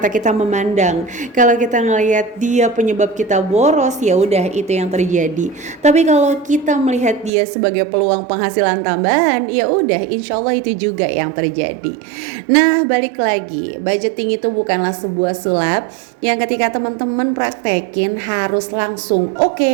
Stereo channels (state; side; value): drops out; left; at 7.3 s